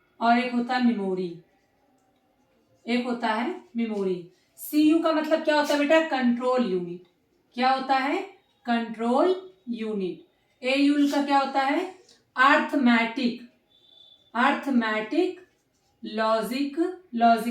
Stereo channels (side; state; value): both; identical; correlation 1.00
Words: और एक होता है मेमोरी। एक होता है मेमोरी। सीयू का मतलब क्या होता है बेटा, कंट्रोल यूनिट। क्या होता है, कंट्रोल यूनिट। एयू का क्या होता है, अर्थमेटिक,